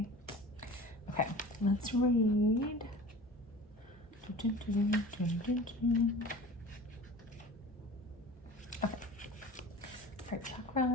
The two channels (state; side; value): normal; both; correlation 0.39